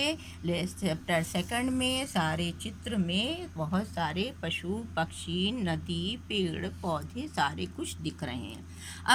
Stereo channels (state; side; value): identical; both; correlation 1.00